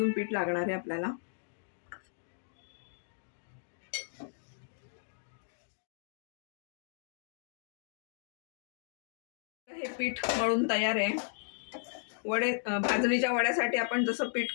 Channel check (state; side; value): silent; right; digital silence